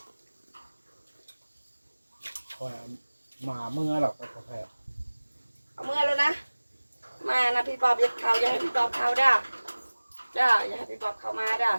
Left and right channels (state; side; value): inverted; both; correlation -1.00